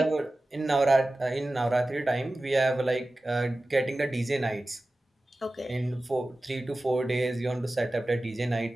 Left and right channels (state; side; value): normal; both; correlation 0.96